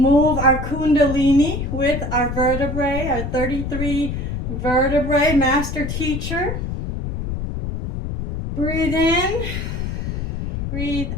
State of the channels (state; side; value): noise; left; rumble, 4 dB below the sound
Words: our kundalini with our vertebrae, our 33 vertebrae, master teacher. Breathe in, breathe